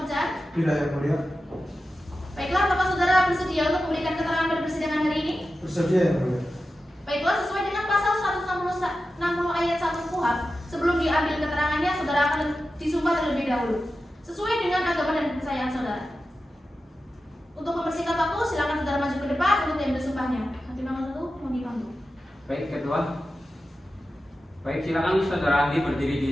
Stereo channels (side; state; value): both; normal; correlation 0.92